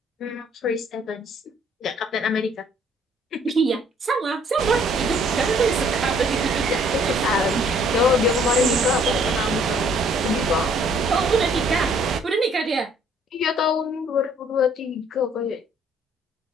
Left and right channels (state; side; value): normal; both; correlation 0.61